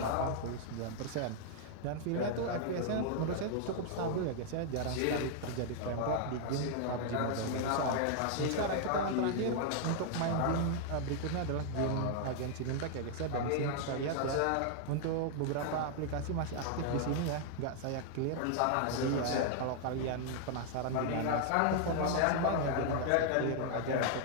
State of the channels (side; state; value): both; different; correlation 0.00